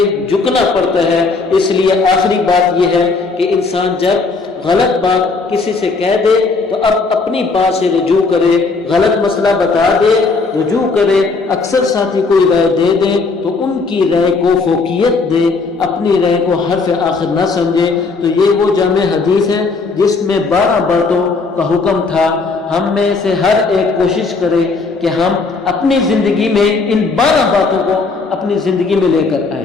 جھکنا پڑتا ہے۔ اس لیے آخری بات یہ ہے کہ انسان جب غلط بات کسی سے کہہ دے تو اب اپنی بات سے رجوع کرے، غلط مسئلہ بتا دے رجوع کرے۔ اکثر ساتھی کوئی رائے دے دیں تو ان کی رائے کو فوقیت دے، اپنی رائے کو حرف آخر نہ سمجھے۔ تو یہ وہ جامع حدیث ہے جس میں 12 باتوں کا حکم تھا۔ ہم میں سے ہر ایک کوشش کرے کہ ہم اپنی زندگی میں ان 12 باتوں کو اپنی زندگی میں لے کر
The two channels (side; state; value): right; quieter; 4.1 dB